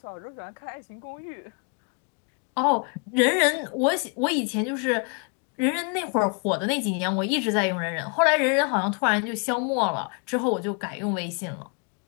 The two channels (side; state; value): right; quieter; 38.2 dB